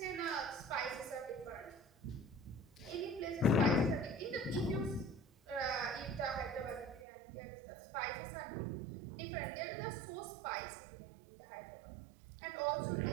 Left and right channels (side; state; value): left; drops out; at 7.1 s